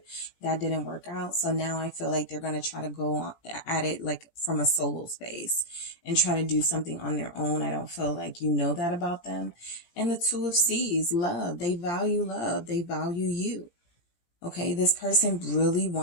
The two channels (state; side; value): late; right; 17 ms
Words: that didn't work out. So now I feel like they're going to try to go at it like from a solo space and try to do something on their own. I don't feel like you know that about them. And the Two of Swords, love. They value love. They value you. Okay, this person really